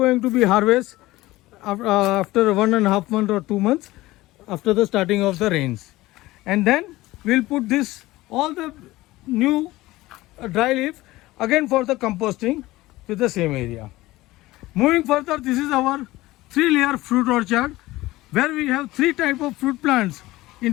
to be harvested after 1.5 months or 2 months after the starting of the rains. And then we'll put this all the new dry leaf again for the composting with the same area. Moving further, this is our 3-layer fruit orchard where we have 3 types of fruit plants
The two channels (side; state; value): right; quieter; 18.3 dB